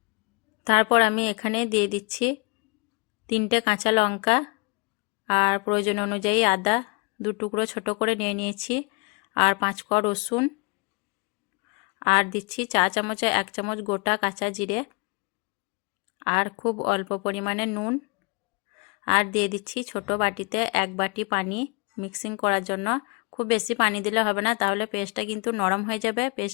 তারপর আমি এখানে দিয়ে দিচ্ছি 3টে কাঁচা লঙ্কা, আর প্রয়োজন অনুযায়ী আদা 2 টুকরো ছোট করে নিয়ে নিয়েছি, আর 5 কোয়া রসুন, আর দিচ্ছি 4 চামচে 1 চামচ গোটা কাঁচা জিরে, আর খুব অল্প পরিমাণে নুন, আর দিয়ে দিচ্ছি ছোট বাটিতে 1 বাটি পানি মিক্সিং করার জন্য। খুব বেশি পানি দিলে হবে না, তাহলে পেস্টটা কিন্তু নরম হয়ে যাবে।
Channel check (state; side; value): quieter; right; 32.3 dB